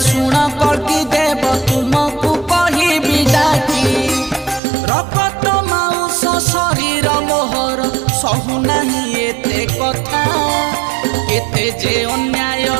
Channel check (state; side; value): drops out; left; at 4.6 s